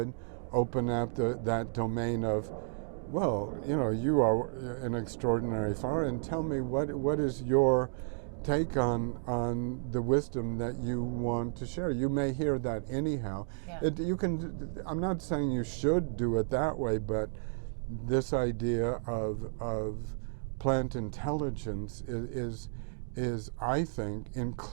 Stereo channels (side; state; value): left; silent; digital silence